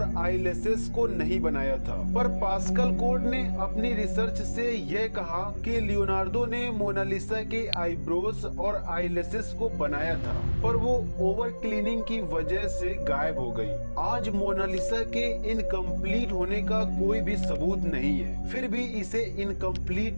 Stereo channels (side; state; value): both; inverted; correlation -1.00